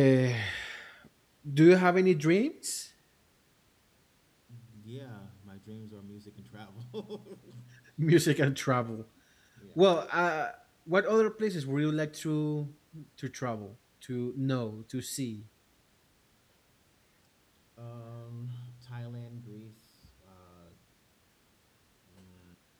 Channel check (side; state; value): both; identical; correlation 1.00